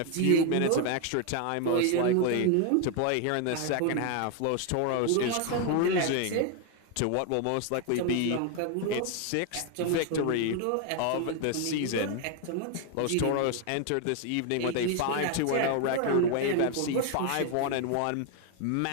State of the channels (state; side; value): different; both; correlation 0.01